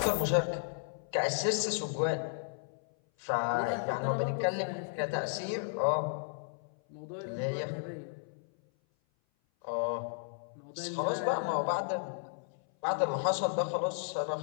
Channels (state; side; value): silent; right; 55 dB below the other